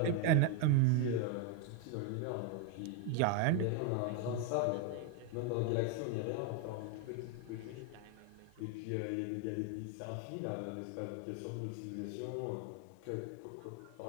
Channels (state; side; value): different; both; correlation 0.01